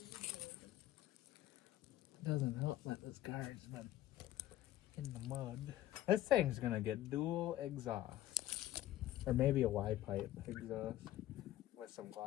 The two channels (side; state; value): right; quieter; 13.9 dB